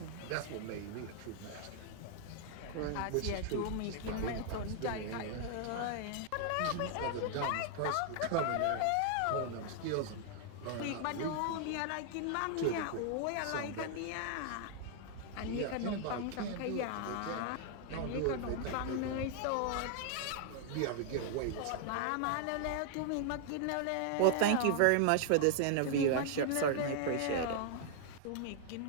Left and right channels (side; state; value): both; different; correlation 0.00